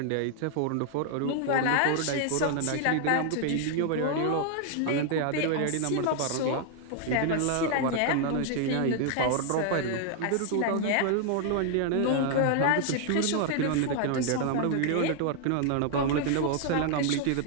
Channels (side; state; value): both; different; correlation 0.00